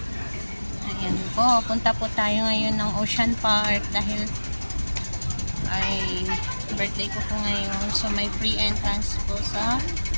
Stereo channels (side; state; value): both; inverted; correlation -1.00